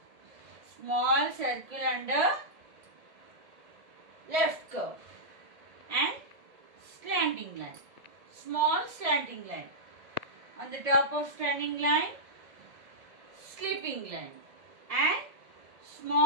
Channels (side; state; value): left; late; 1.7 ms